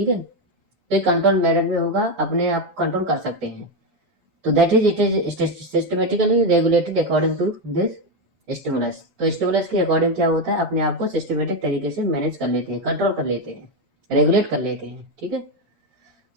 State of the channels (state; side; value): late; left; 8.6 ms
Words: है, तो कंट्रोल मैनर में होगा, अपने आप कंट्रोल कर सकते हैं। तो that is it is systematically regulated according to this stimulus. तो स्टिमुलस के अकॉर्डिंग क्या होता है, अपने आप को सिस्टमेटिक तरीके से मैनेज कर लेते हैं, कंट्रोल कर लेते हैं, रेगुलेट कर लेते हैं, ठीक है।